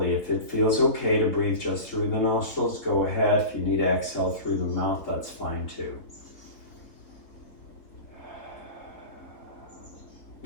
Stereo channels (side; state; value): right; late; 3.9 ms